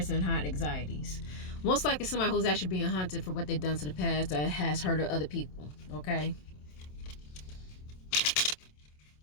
high anxieties. Most likely somebody who's actually being hunted for what they've done to the past that has hurt other people. Okay.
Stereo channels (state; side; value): late; right; 27 ms